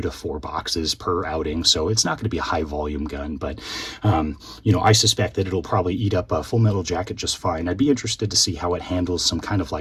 to 4 boxes per outing. So it's not going to be a high volume gun, but I suspect that it'll probably eat up a Full Metal Jacket just fine. I'd be interested to see how it handles some kind of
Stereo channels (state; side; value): identical; both; correlation 1.00